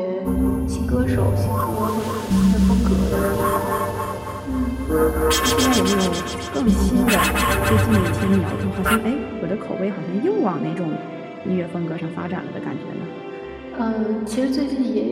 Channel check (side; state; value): both; identical; correlation 1.00